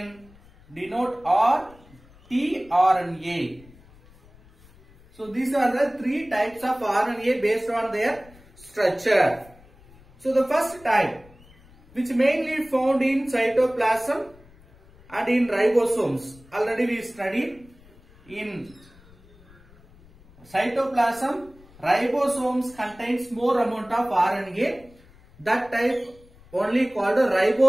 denote tRNA. So these are the 3 types of RNA based on their structure. So the first type, which mainly found in cytoplasm and in ribosomes. Already we studied in cytoplasm, ribosomes contains more amount of RNA. That type only called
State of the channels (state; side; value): noise; left; rumble, 26 dB below the sound